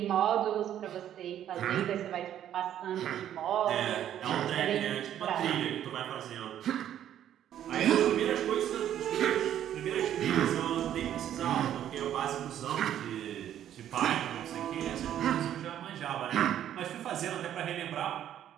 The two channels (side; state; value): left; quieter; 10.9 dB